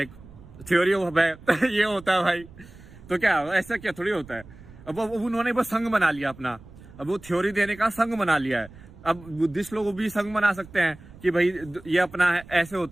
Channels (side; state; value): right; noise; rumble, 20 dB below the sound